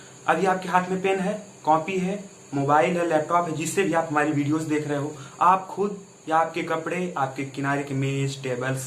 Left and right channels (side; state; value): both; identical; correlation 1.00